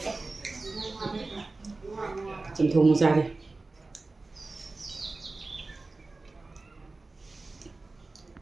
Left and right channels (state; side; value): quieter; left; 3.4 dB